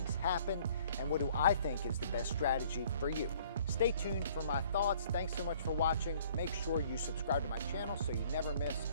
happen? And what do I think is the best strategy for you? Stay tuned for my thoughts. Thanks so much for watching. Make sure you subscribe to my channel so you never miss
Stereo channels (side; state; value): both; inverted; correlation -0.57